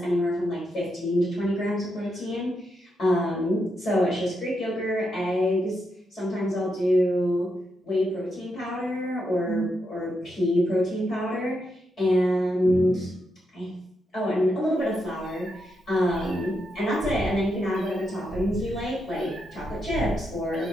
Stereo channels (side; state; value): both; normal; correlation 0.82